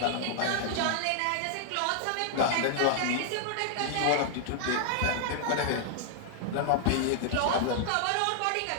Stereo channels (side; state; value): both; different; correlation 0.00